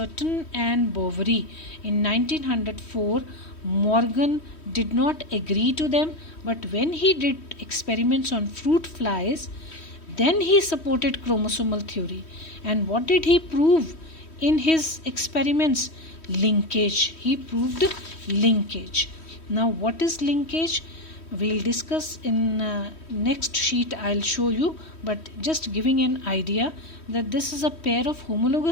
and Boveri in 1904, Morgan did not agree to them, but when he did experiments on fruit flies, then he supported chromosomal theory. And what did he prove in his experiments? Linkage. He proved linkage. Now, what is linkage? We'll discuss in next sheet. I'll show you, but just giving an idea that this is a pair of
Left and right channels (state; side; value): late; right; 3.1 ms